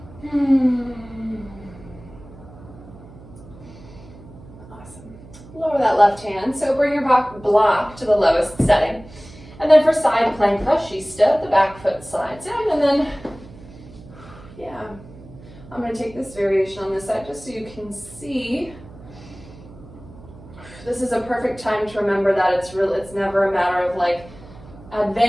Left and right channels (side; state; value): right; noise; hum, 19 dB below the sound